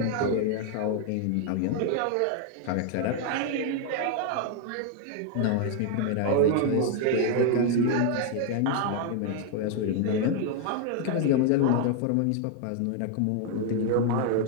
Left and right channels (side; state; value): both; different; correlation 0.00